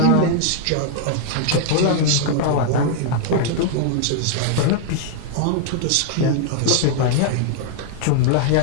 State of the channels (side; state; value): both; different; correlation -0.01